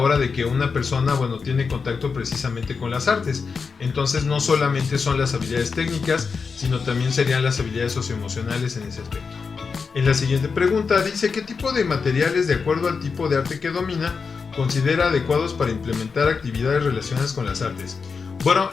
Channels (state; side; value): quieter; right; 5.2 dB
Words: de que una persona, bueno, tiene contacto precisamente con las artes. Entonces no solamente son las habilidades técnicas, sino también serían las habilidades socioemocionales en ese aspecto. En la siguiente pregunta dice, ¿qué tipo de materiales, de acuerdo al tipo de arte que domina, considera adecuados para implementar actividades relacionadas con las artes? Bueno,